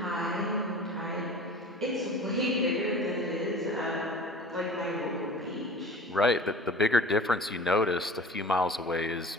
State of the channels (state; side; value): normal; both; correlation 0.41